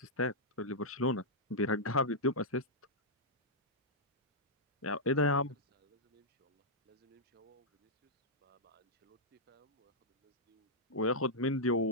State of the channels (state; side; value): normal; both; correlation -0.08